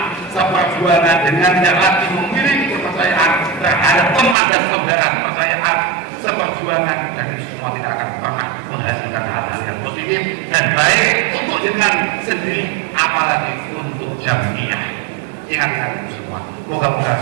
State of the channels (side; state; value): left; drops out; at 4.4 s